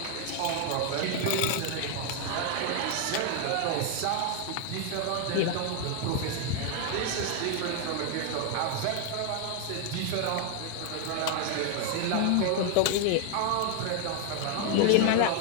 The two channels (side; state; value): both; different; correlation 0.00